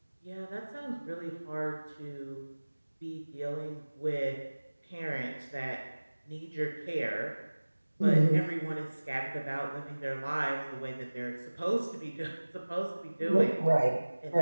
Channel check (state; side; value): inverted; both; correlation -1.00